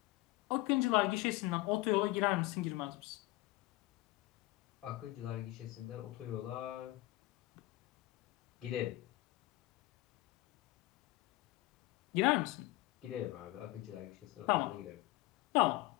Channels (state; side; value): quieter; right; 18.8 dB